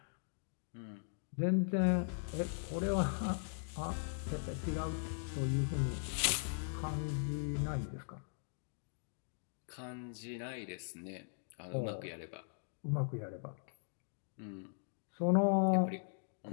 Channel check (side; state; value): right; silent; digital silence